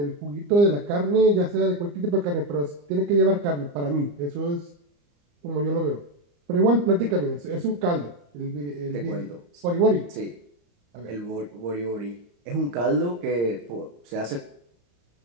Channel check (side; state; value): left; late; 34 ms